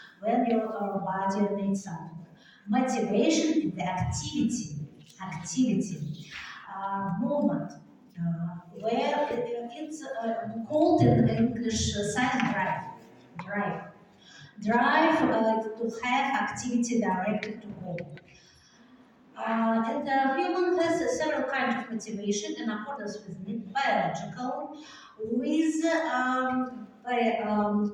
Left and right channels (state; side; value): identical; both; correlation 1.00